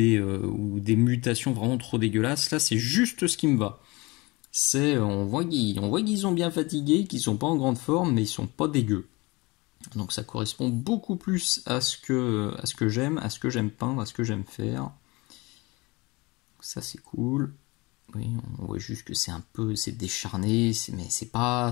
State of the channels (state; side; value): quieter; right; 24.2 dB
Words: des mutations vraiment trop dégueulasses. Là c'est juste ce qui me va. On voit qu'ils sont bien fatigués, qu'ils sont pas en grande forme, mais ils sont pas dégueux. Donc ça correspond beaucoup plus à ce que j'aime, à ce que j'aime peindre, à ce que j'aime faire. Ça c'est cool. Oui, on voit juste que c'est décharné, mais c'est pas